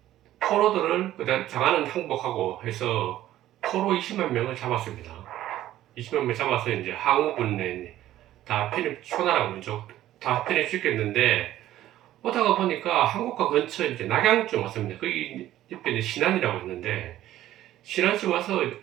포로들을 그다음 장안은 항복하고 해서 포로 20만 명을 잡았습니다. 20만 명 잡아서 이제 항우군에 다 초나라 민족 다 편입시켰는데, 오다가 보니까 한국과 근처 이제 낙양쯤 왔습니다. 거기 옆에 이제 신안이라고 있는데, 신안쯤 와서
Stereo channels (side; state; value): left; quieter; 13.6 dB